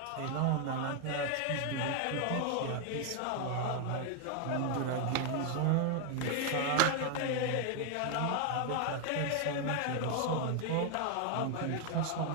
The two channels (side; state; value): both; different; correlation 0.00